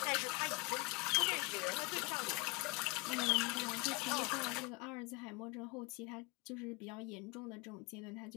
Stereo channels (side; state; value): right; quieter; 25.6 dB